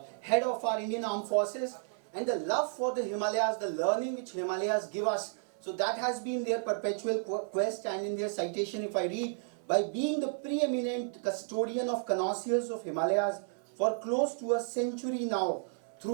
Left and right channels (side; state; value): left; silent; 56 dB below the other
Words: head of our Indian Armed Forces, and the love for the Himalayas, the learning which Himalayas give us. So that has been their perpetual quest, and in their citation, if I read, by being the preeminent custodian of connoisseurs of Himalayas for close to a century now,